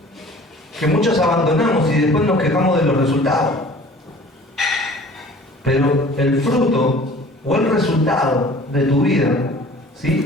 que muchos abandonamos y después nos quejamos de los resultados. Pero el fruto o el resultado de tu vida,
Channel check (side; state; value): both; normal; correlation 0.47